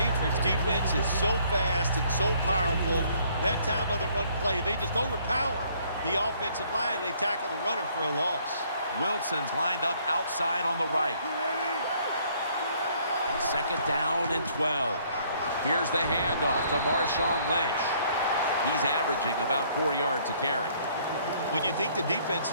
defense is so fast and so powerful. That time of the run play, they just overpower the offensive line. They tackle the runner for a loss. Wilson's lined up outside on the right. Second down and 12. Here's the handoff to Marshawn Lynch. He's averaging about 4 yards a carry. When you think the defense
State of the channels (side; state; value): both; inverted; correlation -0.63